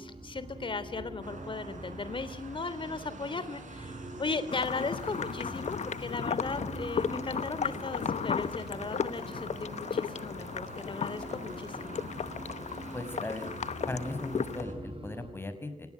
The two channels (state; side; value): quieter; right; 3.9 dB